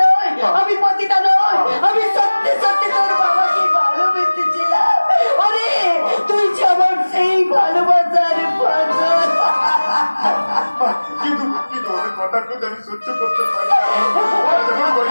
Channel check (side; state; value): both; inverted; correlation -1.00